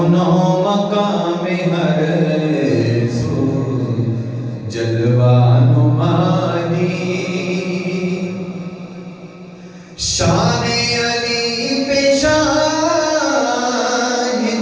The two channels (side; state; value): both; identical; correlation 1.00